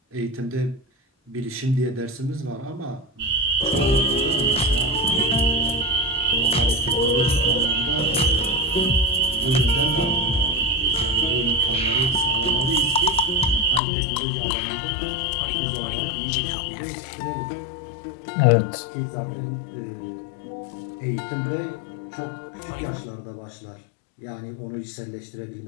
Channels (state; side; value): drops out; right; at 13.8 s